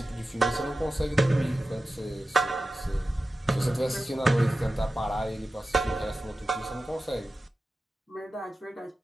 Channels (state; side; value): normal; both; correlation 0.94